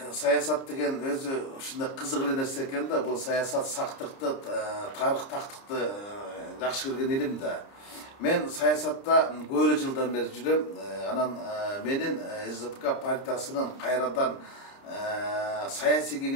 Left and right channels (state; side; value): late; right; 30 ms